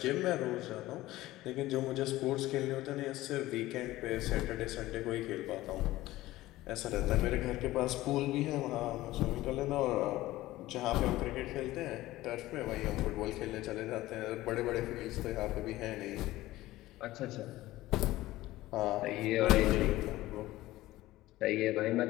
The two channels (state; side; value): quieter; right; 16.9 dB